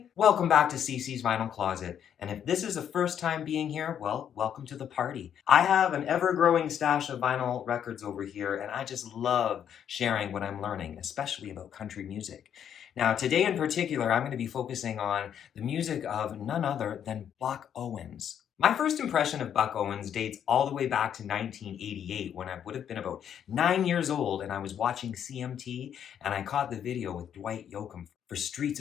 welcome back to CC's Vinyl Closet. And if this is the first time being here, well, welcome to the party. I have an ever-growing stash of vinyl records over here, and I just love sharing what I'm learning, especially about country music. Now, today in particular, I'm going to be focusing on the music of none other than Buck Owens. My first impression of Buck Owens dates all the way back to 1988 when I would have been about 9 years old and I was watching CMT and I caught the video with Dwight Yoakam for Streets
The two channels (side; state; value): right; quieter; 9.1 dB